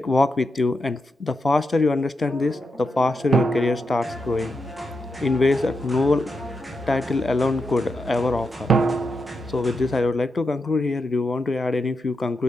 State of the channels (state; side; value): normal; both; correlation 0.85